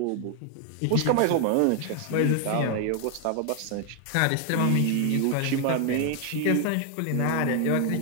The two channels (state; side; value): different; both; correlation 0.00